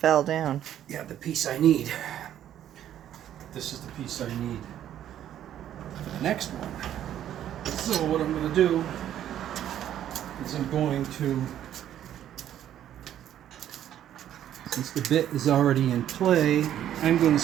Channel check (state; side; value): quieter; left; 11.0 dB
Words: down. Yeah, the piece I need. This is the piece I need for the next one. So what I'm going to do is I'm going to, since the bit is already in play, I'm going to